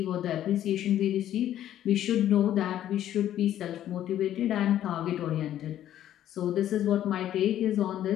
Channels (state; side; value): quieter; right; 11.8 dB